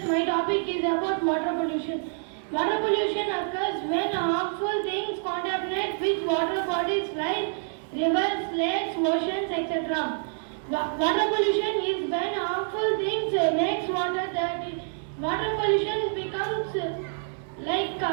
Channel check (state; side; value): silent; left; 60 dB below the other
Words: my topic is about water pollution. Water pollution occurs when harmful things contaminate with water bodies like rivers, lakes, oceans, etc. Water pollution is when harmful things makes water dirty. Water pollution becomes like